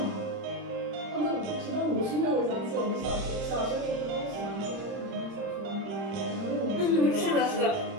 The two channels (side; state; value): left; late; 30 ms